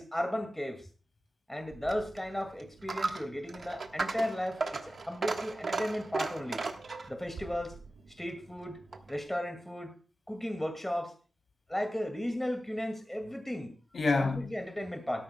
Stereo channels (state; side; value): normal; both; correlation 0.95